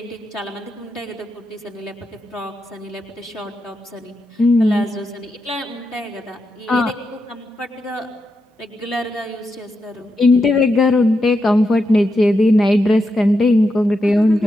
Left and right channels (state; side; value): normal; both; correlation 0.85